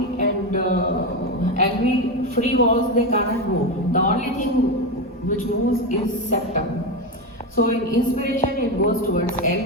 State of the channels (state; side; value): normal; both; correlation 0.14